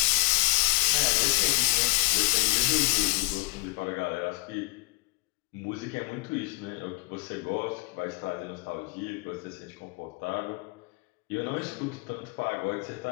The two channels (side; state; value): right; quieter; 23.6 dB